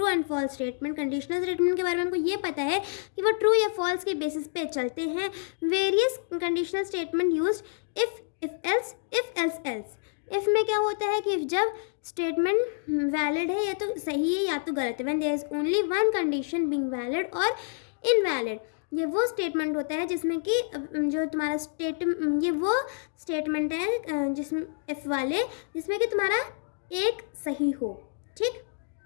and false statement. Conditional statement के बारे में हमको ये पता है कि वो ट्रू या फॉल्स के बेसिस पे चलते हैं। Various conditional statement used if else else. If में क्या होता है कि जब स्टेटमेंट वैलिड है या तो सही है या तो गलत है, when there is only one condition being valid और इनवैलिड। ये वो स्टेटमेंट होता है जिसमें कि जो तुम्हारा ये वो स्टेटमेंट है जिसमें इफ वाले, जिसमें कि तुम्हारा एक सही हो, ठीक,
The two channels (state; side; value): silent; right; digital silence